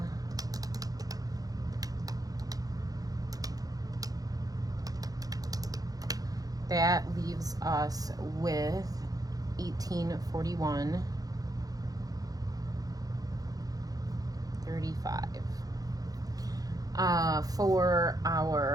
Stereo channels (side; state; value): left; late; 0.18 ms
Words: that leaves us with $1841.35. For